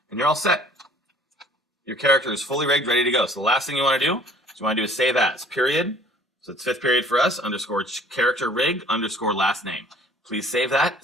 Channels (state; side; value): normal; both; correlation 0.53